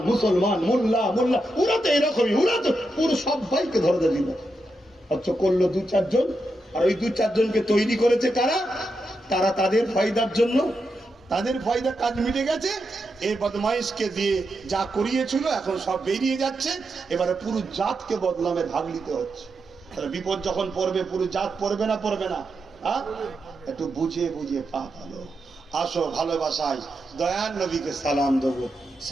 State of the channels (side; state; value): both; normal; correlation 0.86